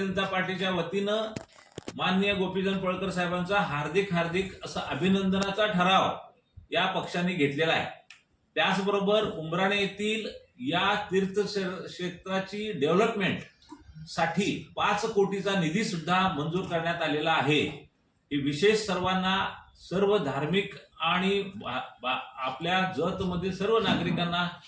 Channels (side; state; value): both; identical; correlation 1.00